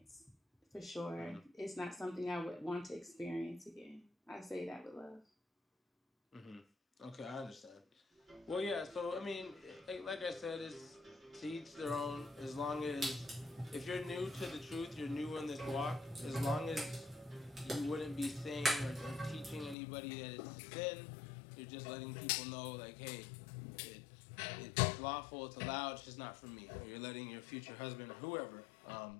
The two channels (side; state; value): right; drops out; at 19.8 s